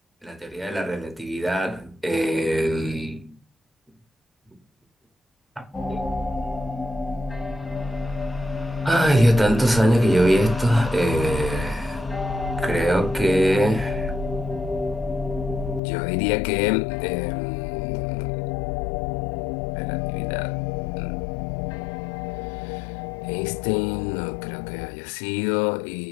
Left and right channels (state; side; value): drops out; right; at 15.8 s